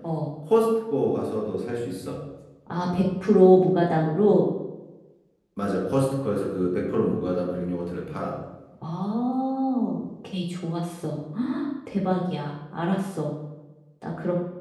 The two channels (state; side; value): identical; both; correlation 1.00